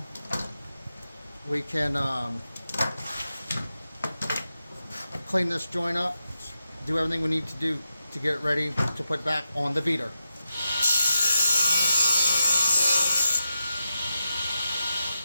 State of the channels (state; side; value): inverted; both; correlation -0.88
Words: we can clean this joint up, do everything we need to do to get it ready to put back on the beater.